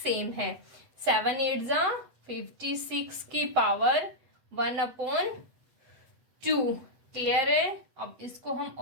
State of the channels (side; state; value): left; late; 8.1 ms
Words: है। 7 8 जा 56 की पावर 1/2। क्लियर है? अब इसको हम